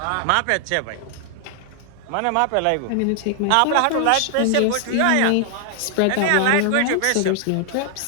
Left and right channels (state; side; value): different; both; correlation 0.00